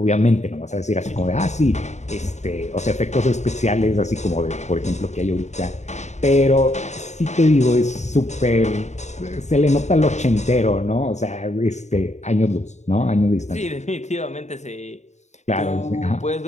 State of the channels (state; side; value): late; right; 0.33 ms